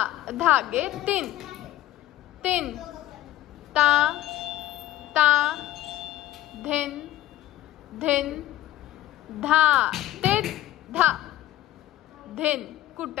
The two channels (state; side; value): quieter; right; 14.7 dB